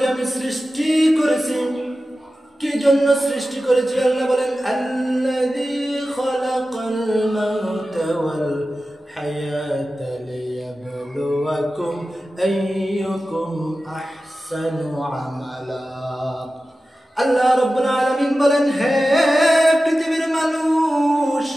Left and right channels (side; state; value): both; normal; correlation 0.94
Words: আমি সৃষ্টি করেছি। কি জন্য সৃষ্টি করেছি? আল্লাহ বলেন, আল্লাযী খালাকাল মাউতা ওয়াল হায়াতা লিয়াবলুয়াকুম আইয়ুকুম আহসানু আমালা। আল্লাহ রাব্বুল আলামিন বলেন, হে পৃথিবীর মানুষ,